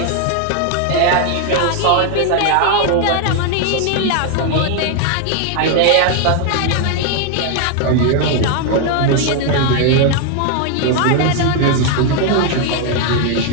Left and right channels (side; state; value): both; different; correlation 0.00